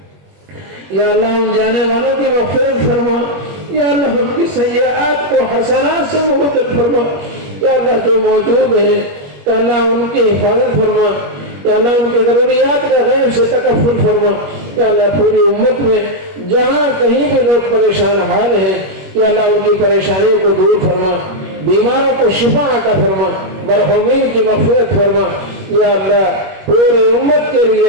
یا اللہ ان جانے والوں کی مغفرت فرما، یا اللہ ان کی سیئات کو حسنات سے مبدل فرما، یا اللہ جو موجود ہیں یا اللہ ان کی حفاظت فرما، یا اللہ ان کی ضروریات کا غیب سے تکفل فرما، یا اللہ پوری امت میں جہاں کہیں بھی لوگ پریشان حال ہیں یا اللہ ان کی پریشانیوں کو دور فرما، بیماروں کو شفا عطا فرما، مرحومین کی مغفرت فرما، یا اللہ پوری امت کے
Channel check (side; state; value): left; late; 21 ms